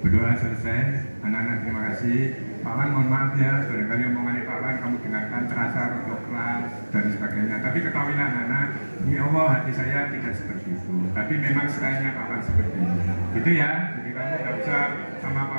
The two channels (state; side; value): inverted; both; correlation -1.00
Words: Berdoa selesai, anak-anak terima kasih. Pak Wan mohon maaf ya, barangkali omongannya Pak Wan kamu dengarkan terasa untuk kelas dan sebagainya. Tapi ketahuilah anak-anak, ini Allah hati saya tidak seperti itu. Tapi memang stylenya Pak Wan seperti ini. Gitu ya, jadi kamu tidak usah sama Pak